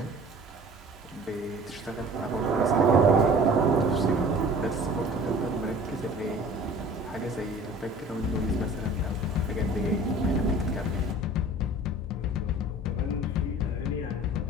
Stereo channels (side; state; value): both; normal; correlation 0.45